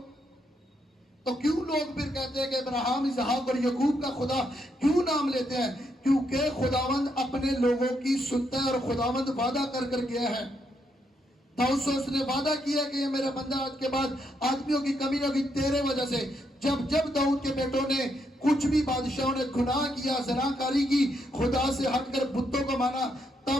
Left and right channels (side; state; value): both; normal; correlation 0.77